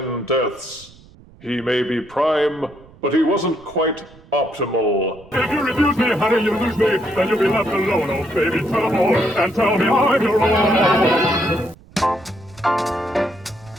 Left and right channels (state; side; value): noise; right; rumble, 24 dB below the sound